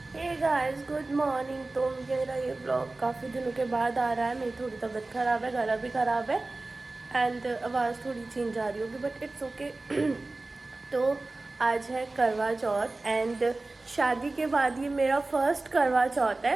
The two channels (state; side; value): quieter; left; 3.1 dB